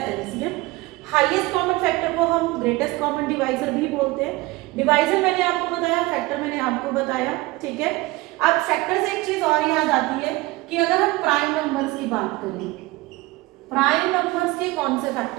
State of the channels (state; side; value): quieter; left; 21.0 dB